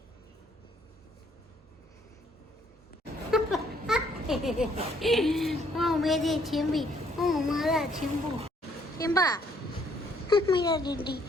ओ मेरी चिम्बी, ओ मेरा चिम्बू, सिम्बा। मेरा डीडी,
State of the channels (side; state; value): both; normal; correlation 0.66